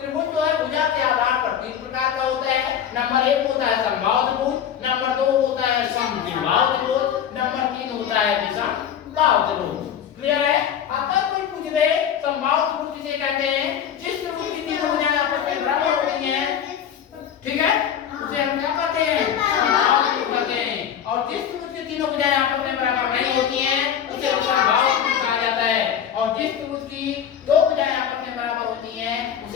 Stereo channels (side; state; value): right; quieter; 8.9 dB